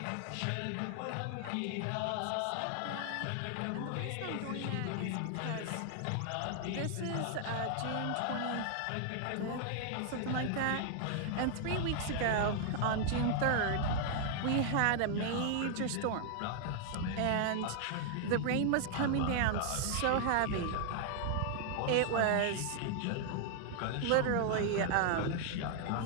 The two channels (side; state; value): both; different; correlation 0.00